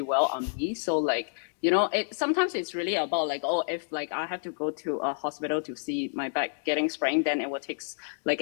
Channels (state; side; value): silent; right; digital silence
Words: well on me. So like, you know, sometimes it's really about like, oh, if like I have to go to a hospital to see my back getting sprained, then it will take like